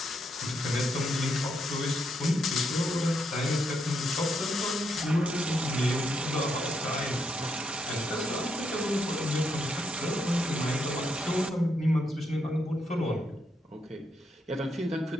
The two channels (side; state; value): both; normal; correlation 0.78